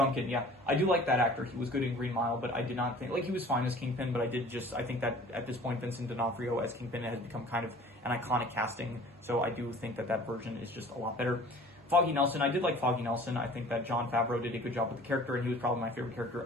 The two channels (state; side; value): normal; both; correlation 0.47